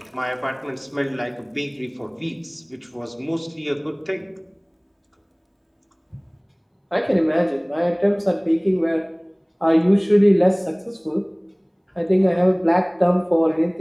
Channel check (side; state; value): both; identical; correlation 1.00